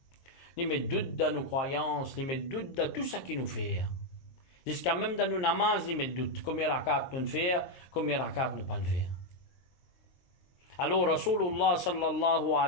Il met doute dans nos croyances, il met doute dans tout ça qui nous fait. Jusqu'à même dans nos namaz, il met doute. Combien de rakats nous faire, combien de rakats nous pas faire. Alors, Rasulullah sallallahu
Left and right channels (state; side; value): late; right; 22 ms